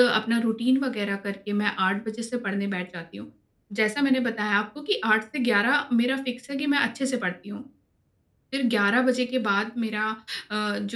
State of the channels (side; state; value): both; identical; correlation 1.00